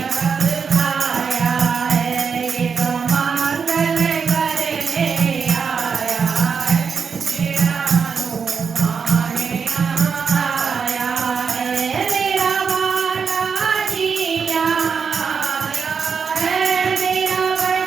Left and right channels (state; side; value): quieter; left; 5.9 dB